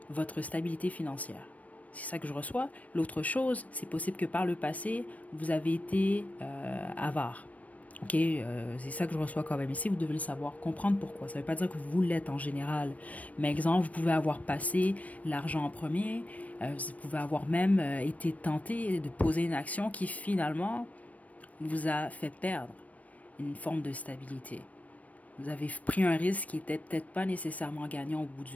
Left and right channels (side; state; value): right; late; 0.069 ms